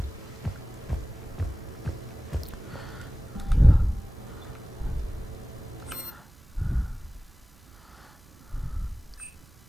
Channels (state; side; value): normal; both; correlation 0.96